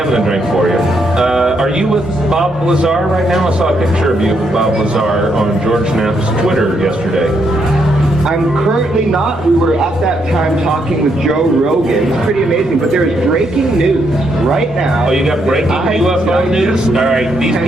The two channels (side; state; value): both; normal; correlation 0.77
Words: a drink for you. Are you with Bob Lazar right now? I saw a picture of you with Bob Lazar on George Knapp's Twitter yesterday. I'm currently not. We were at that time talking with Joe Rogan. It's pretty amazing, but there is breaking news right now. Oh, you got breaking UFO news? All right, these